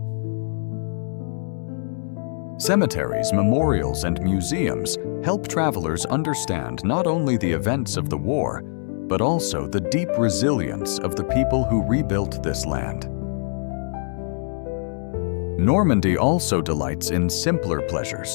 Cemeteries, memorials, and museums help travelers understand not only the events of the war, but also the deep resilience of the people who rebuilt this land. Normandy also delights in simpler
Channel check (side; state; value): right; silent; digital silence